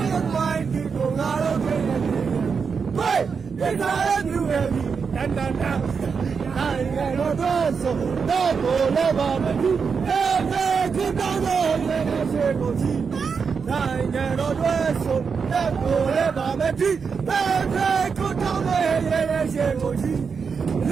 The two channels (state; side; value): quieter; left; 5.7 dB